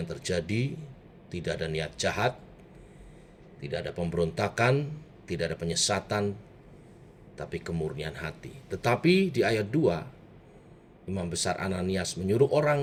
terjadi tidak ada niat jahat, tidak ada pemberontakan, tidak ada penyesatan, tapi kemurnian hati. Tetapi di ayat 2, Imam Besar Ananias menyuruh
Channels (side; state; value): both; identical; correlation 1.00